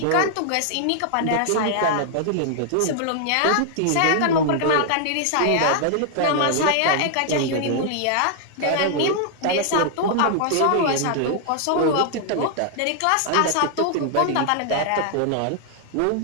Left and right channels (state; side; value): different; both; correlation 0.00